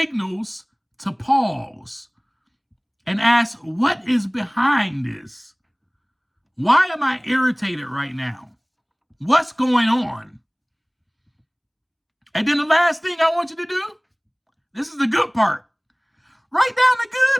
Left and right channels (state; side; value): identical; both; correlation 1.00